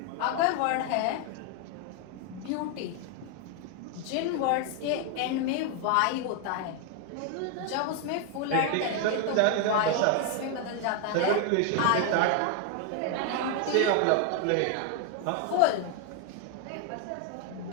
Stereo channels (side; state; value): both; different; correlation 0.01